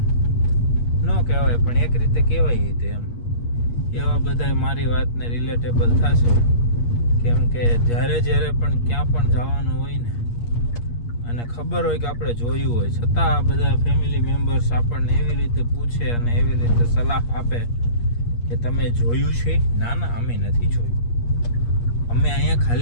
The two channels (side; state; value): right; late; 8.5 ms